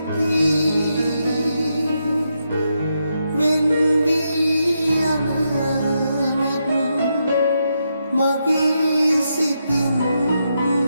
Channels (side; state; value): both; inverted; correlation -0.83